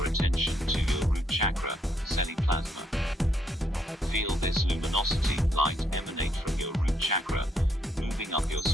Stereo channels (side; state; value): both; normal; correlation 0.74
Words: attention to your root chakra, Seli plasma. Feel this luminosity, light emanate from your root chakra, moving up your